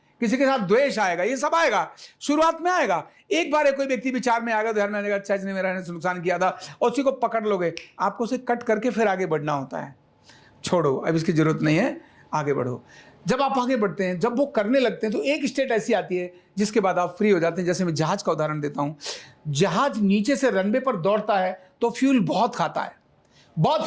किसी के साथ द्वेष आएगा, ये सब आएगा, शुरुआत में आएगा। एक बार कोई व्यक्ति विचार में आएगा, ध्यान में आएगा, अच्छा इसने मेरा नुकसान किया था, और उसी को पकड़ लोगे, आपको उसे कट करके फिर आगे बढ़ना होता है। छोड़ो, अब इसकी जरूरत नहीं है, आगे बढ़ो। जब आप आगे बढ़ते हैं, जब वो करने लगते हैं, तो एक स्टेट ऐसी आती है जिसके बाद आप फ्री हो जाते हैं। जैसे मैं जहाज का उदाहरण देता हूं। जहाज नीचे से रनवे पर दौड़ता है तो फ्यूल बहुत खाता है, बहुत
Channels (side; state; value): both; identical; correlation 1.00